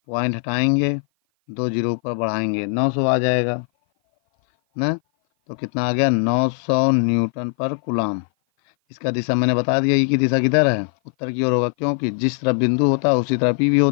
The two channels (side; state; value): right; silent; 56 dB below the other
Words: पॉइंट हटाएंगे, 2 जीरो ऊपर बढ़ाएंगे, 900 आ जाएगा ना। तो कितना आ गया? 900 न्यूटन पर कूलाम। इसका दिशा मैंने बता दिया, ई की दिशा किधर है? उत्तर की ओर होगा, क्योंकि जिस तरफ बिंदु होता है उसी तरफ ई भी